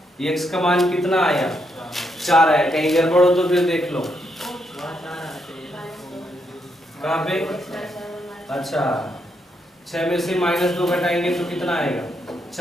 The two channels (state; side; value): normal; both; correlation 0.78